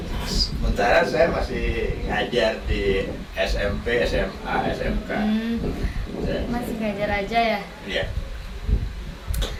Sementara saya masih ngajar di SMP, SMA, SMK. Masih ngajar aja ya? Iya.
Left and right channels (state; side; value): identical; both; correlation 1.00